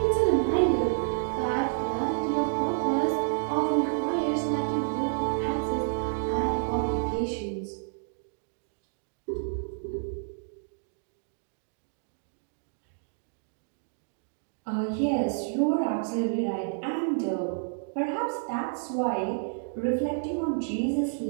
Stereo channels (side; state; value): left; silent; digital silence